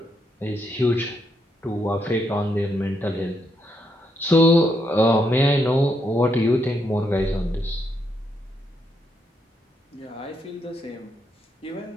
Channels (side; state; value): both; normal; correlation 0.78